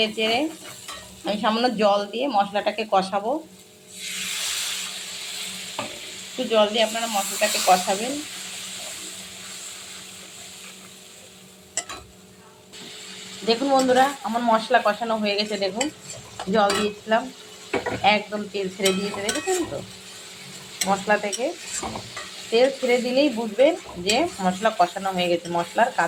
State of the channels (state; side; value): identical; both; correlation 1.00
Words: চেড়ে আমি সামান্য জল দিয়ে মশলাটাকে কষাবো। একটু জল দিয়ে আপনারা মশলাটাকে কষাবেন। দেখুন বন্ধুরা, আমার মশলা কষানো হয়ে গেছে। দেখুন, জল দিয়েছিলাম, একদম তেল ছেড়ে দিয়েছে। দেখেছেন তো, মশলা থেকে তেল ছেড়ে দিলেই বুঝবেন যে মশলা কষানো হয়ে গেছে। মশলার